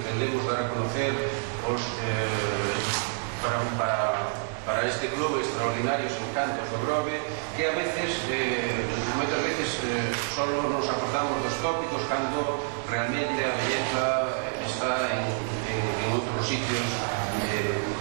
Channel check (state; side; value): silent; left; 59 dB below the other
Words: dar a conocer os para este clube extraordinarios encantos do Grove, que a veces, moitas veces solo nos acordamos dos tópicos cando realmente a belleza está en outros sitios